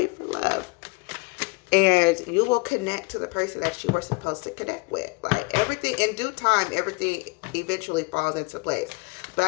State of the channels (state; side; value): quieter; right; 28.0 dB